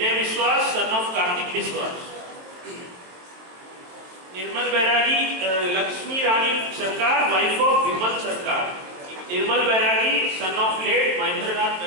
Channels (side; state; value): left; late; 22 ms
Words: Biswas son of Kartik विश्वास, निर्मल बैरागी लक्ष्मी रानी सरकार वाइफ ऑफ विमल सरकार, निर्मल बैरागी सन ऑफ लेट महेंद्रनाथ